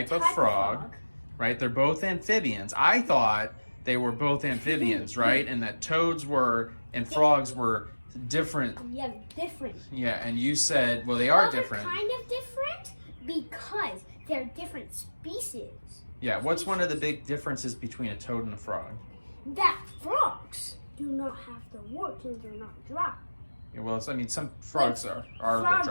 of frog, right? They're both amphibians. I thought they were both amphibians, right? And that toads and frogs were different. Yeah, different. Yeah, and you said, well, they are They're different. kind of different because they're different species. Yeah, what's one of the big differences between a toad and a frog? That frogs do not have the warts and they're not dry. Yeah, well, some frogs are frogs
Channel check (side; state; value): both; inverted; correlation -1.00